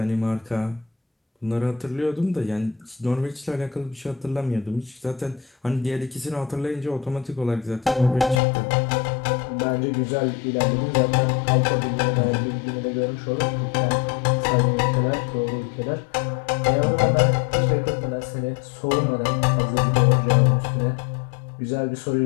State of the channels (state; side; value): drops out; right; at 8.4 s